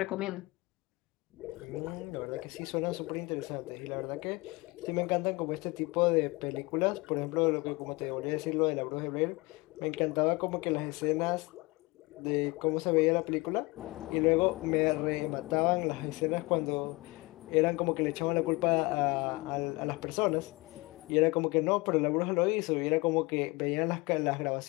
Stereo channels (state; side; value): quieter; right; 24.3 dB